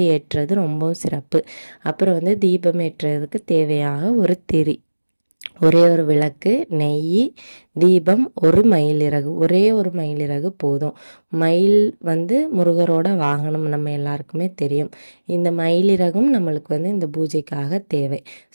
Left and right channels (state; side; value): inverted; both; correlation -1.00